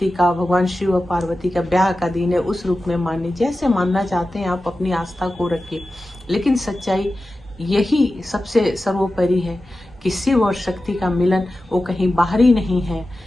का, भगवान शिव और पार्वती का ब्याह का दिन है, उस रूप में मानिए। जैसे मानना चाहते हैं आप अपनी आस्था को रखिए, लेकिन सच्चाई यही सबसे सर्वोपरि है कि शिव और शक्ति का मिलन वो कहीं बाहरी नहीं है,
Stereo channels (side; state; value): both; normal; correlation 0.94